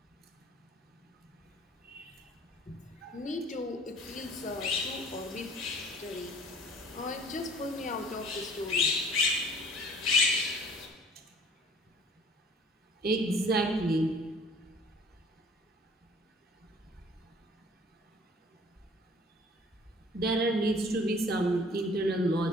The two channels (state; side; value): normal; both; correlation 0.52